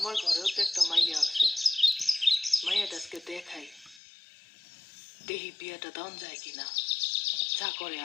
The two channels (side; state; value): right; drops out; at 4.0 s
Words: ঘরেও তো একটা মাইয়া আছে, মাইয়াটা আজকে দেখাই, দেহি বিয়াটা দান যায় কিনা, যা করে